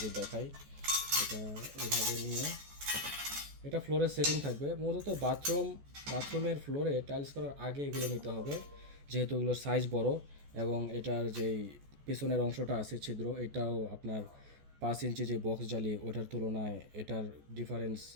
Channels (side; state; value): left; late; 14 ms